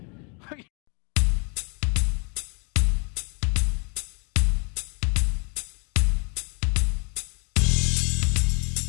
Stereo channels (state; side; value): quieter; right; 34.8 dB